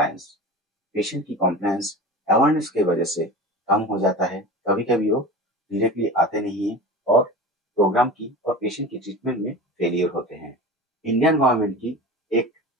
पेशेंट की कॉम्प्लायंस अवेयरनेस की वजह से कम हो जाता है। कभी कभी वो डायरेक्टली आते नहीं है और प्रोग्राम की और पेशेंट की ट्रीटमेंट में फेलियर होते हैं। इंडियन गवर्नमेंट की एक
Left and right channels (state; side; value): normal; both; correlation 0.32